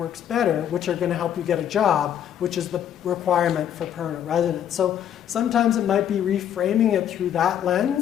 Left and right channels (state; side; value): quieter; right; 9.9 dB